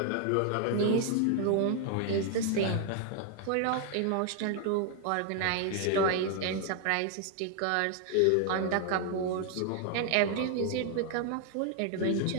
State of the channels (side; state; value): both; different; correlation 0.00